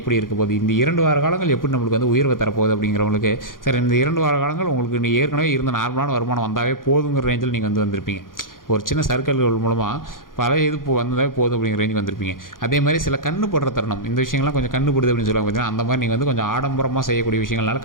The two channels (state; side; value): late; right; 0.90 ms